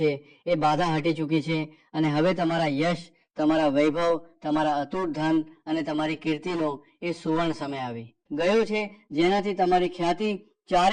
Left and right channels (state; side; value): identical; both; correlation 1.00